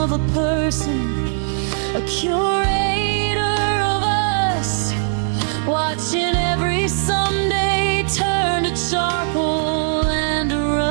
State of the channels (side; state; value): left; silent; 64 dB below the other